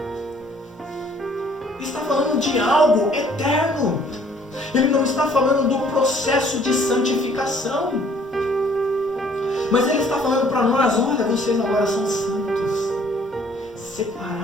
Está falando de algo eterno. Ele não está falando do processo de santificação. Mas Ele está falando para nós, olha, vocês agora são santos,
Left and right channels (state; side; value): normal; both; correlation 0.59